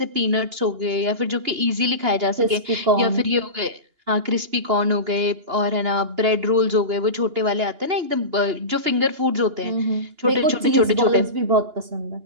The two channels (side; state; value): left; late; 2.9 ms